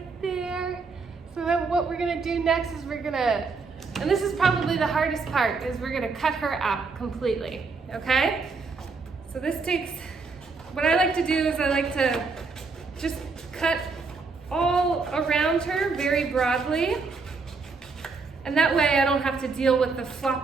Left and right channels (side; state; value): left; quieter; 4.4 dB